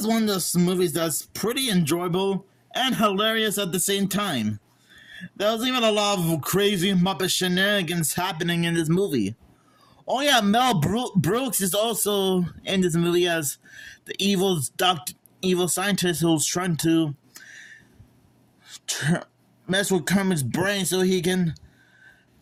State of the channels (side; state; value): both; identical; correlation 1.00